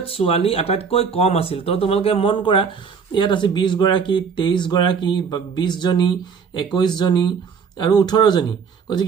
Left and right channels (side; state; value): left; quieter; 6.1 dB